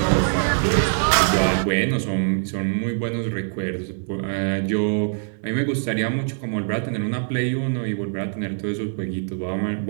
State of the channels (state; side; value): silent; left; 63 dB below the other